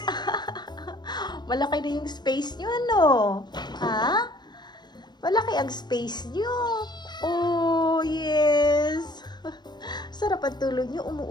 Malaki na yung space nyo, ano? Ha? Malaki ang space nyo. Oh, yes. Sarap ang tulog nyo.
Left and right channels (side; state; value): right; late; 0.21 ms